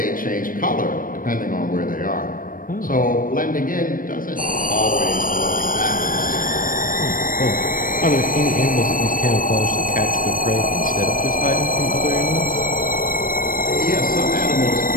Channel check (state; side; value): late; right; 0.40 ms